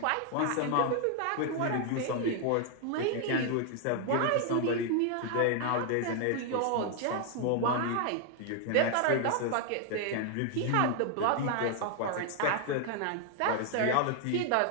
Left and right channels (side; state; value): both; different; correlation 0.00